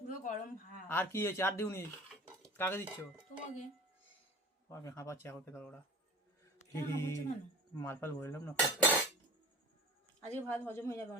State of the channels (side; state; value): both; normal; correlation 0.41